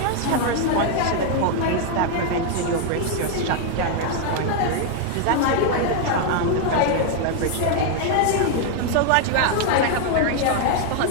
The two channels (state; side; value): different; both; correlation 0.00